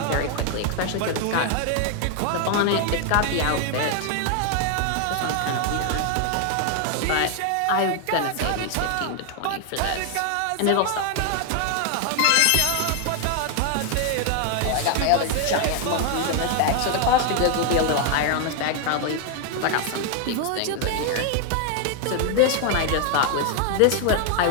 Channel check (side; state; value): both; different; correlation 0.00